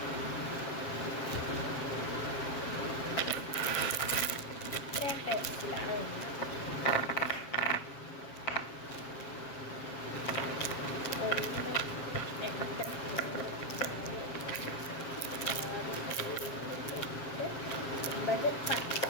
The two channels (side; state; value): right; late; 7.4 ms